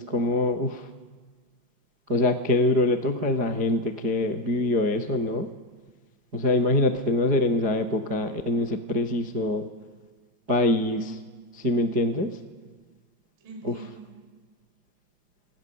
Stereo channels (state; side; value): late; left; 4.9 ms